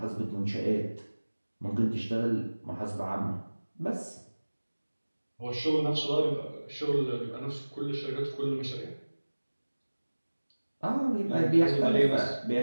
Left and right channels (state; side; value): inverted; both; correlation -1.00